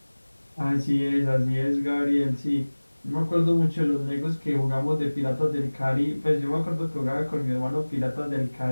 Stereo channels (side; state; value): both; inverted; correlation -1.00